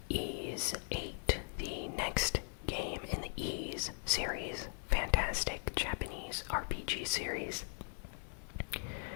Ys 8, the next game in the Ys series, fantastic Japanese RPG series,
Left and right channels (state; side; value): silent; right; 52 dB below the other